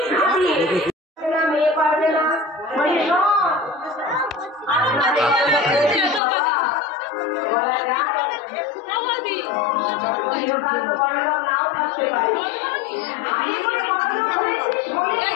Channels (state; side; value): drops out; right; at 6.2 s